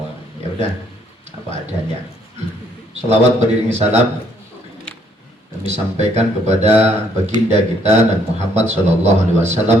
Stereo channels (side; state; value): both; normal; correlation 0.67